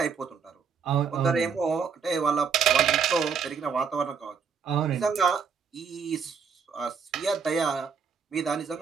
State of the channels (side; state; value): left; quieter; 6.1 dB